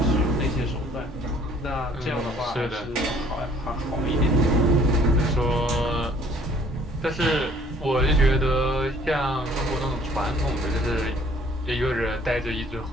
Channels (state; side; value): normal; both; correlation 0.57